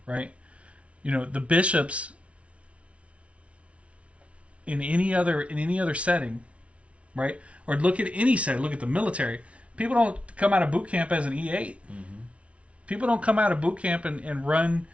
Right? The bishops in any other setting, right? Or look at any setting, look at the military. People don't come out of boot camp as an E8. People don't come out of boot camp and run,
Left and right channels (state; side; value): late; left; 0.062 ms